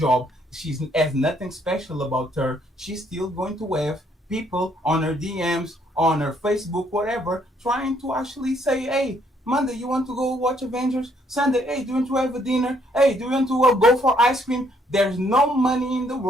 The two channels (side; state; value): both; normal; correlation 0.69